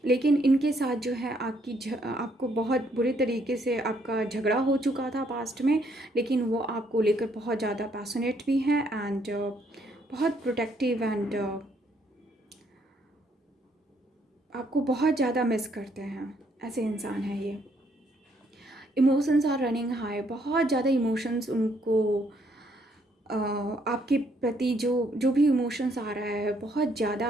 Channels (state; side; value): normal; both; correlation 0.70